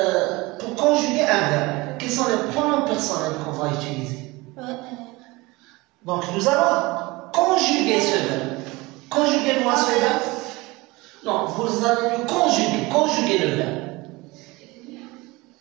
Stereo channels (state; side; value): quieter; left; 22.6 dB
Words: conjuguer un verbe? Quels sont les pronoms personnels qu'on va utiliser? Donc, nous allons conjuguer ce verbe. Conjuguez-moi ce verbe. Non, vous allez le conjuguer le verbe.